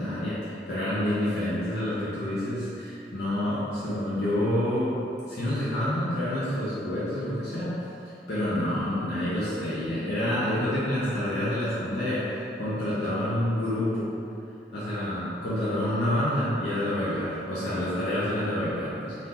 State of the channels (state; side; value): normal; both; correlation 0.64